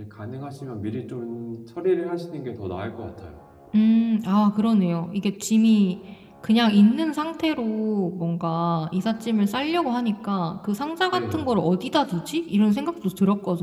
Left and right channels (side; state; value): both; identical; correlation 1.00